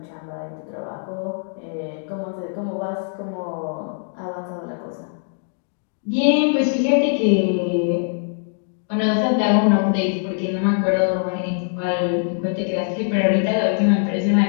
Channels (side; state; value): right; silent; 64 dB below the other